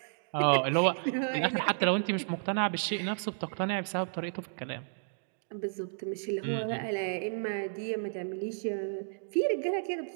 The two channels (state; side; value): silent; left; digital silence